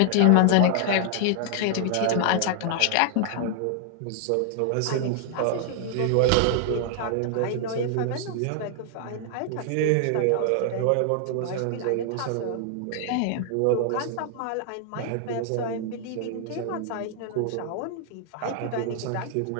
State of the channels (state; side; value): different; both; correlation 0.00